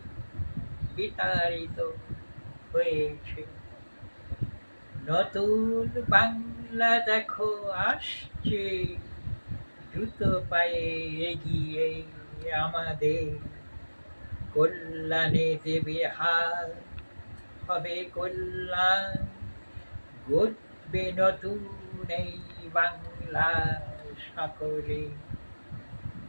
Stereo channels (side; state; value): both; inverted; correlation -1.00